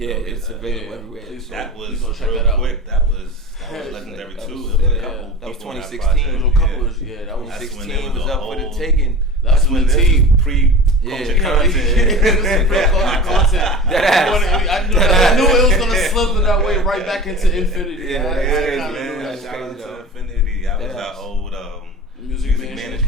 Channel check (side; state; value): both; normal; correlation 0.34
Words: it's available Yeah. everywhere. Please that was please go check real that out. quick. That was legendary That too. was- It was a yeah, couple. that was people on 2016. project. There was a couple of, yeah, that was That's when 16 there was a up for the whole- taking. That's when this the is team. pre-culture Yeah. content. I knew it was gonna slip in that way right back into infinity. Yeah, I that's crazy, kinda Man, knew that. That's shout out crazy, to though. Infinity. That was That's- our old Music music management